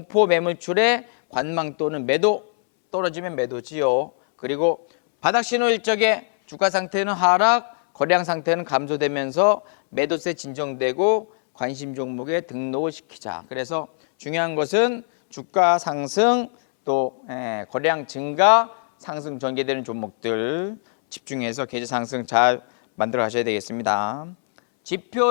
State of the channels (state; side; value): silent; right; 63 dB below the other